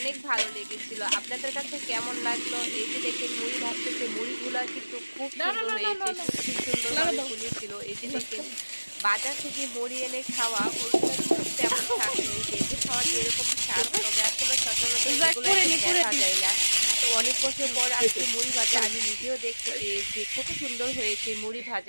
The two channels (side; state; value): both; inverted; correlation -1.00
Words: ভালো লেগেছিল। আপনাদের কাছে কেমন লাগলো? এই যে দেখেন মুড়ি ভাজতেছে, মুড়িগুলা কিন্তু খুব সুন্দর হয়েছে, খুব সুন্দরভাবে ফুলেছিল। এই যে দেখেন, বাজার থেকে মুড়ি এনে খাওয়া ওইগুলো কিন্তু তেমন স্বাদ নেই। ভেজে খাওয়া যেরকম স্বাদ, তবে আসলে সচরাচর এগুলো দেখা যায় না। তো অনেক বছর পর আজকে মুড়ি ভাজা আমি নিজেও দেখতে পেয়েছি, খুব সুন্দর হয়েছে মুড়ি